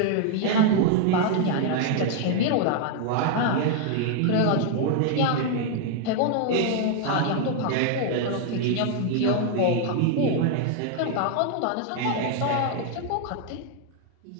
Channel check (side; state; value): both; different; correlation 0.00